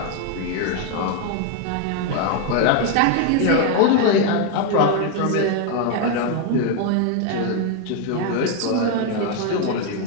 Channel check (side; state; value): both; different; correlation 0.01